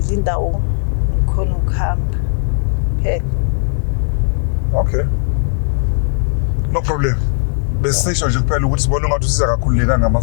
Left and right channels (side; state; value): right; silent; 69 dB below the other